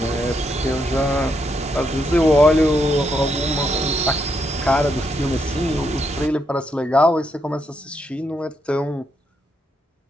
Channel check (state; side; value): normal; both; correlation 0.78